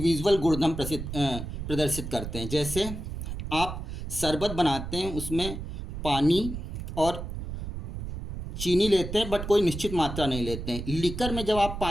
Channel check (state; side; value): noise; right; rumble, 7 dB below the sound